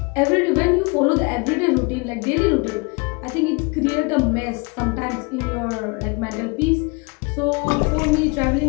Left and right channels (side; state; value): right; quieter; 30.1 dB